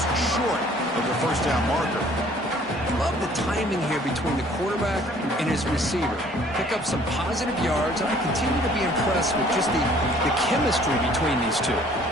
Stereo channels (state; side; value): normal; both; correlation 0.56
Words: short of the first down marker. Love the timing here between the quarterback and his receiver. Pick up some positive yards, and I continue to be impressed with just the chemistry between these two.